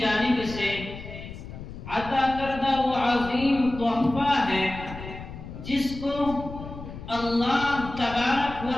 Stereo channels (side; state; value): left; noise; rumble, 12 dB below the sound